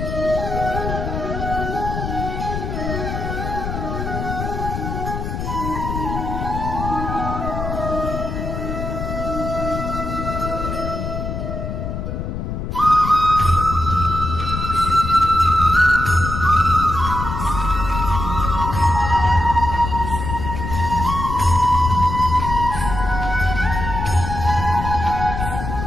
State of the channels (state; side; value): noise; left; rumble, 4 dB below the sound